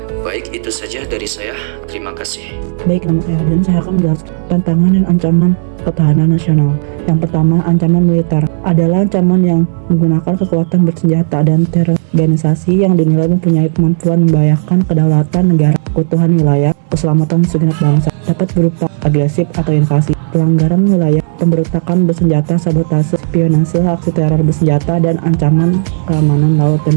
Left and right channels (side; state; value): left; silent; digital silence